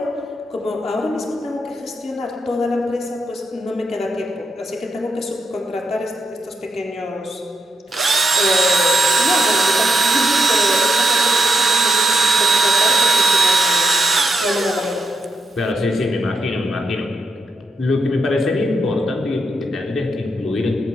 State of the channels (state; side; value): normal; both; correlation 0.83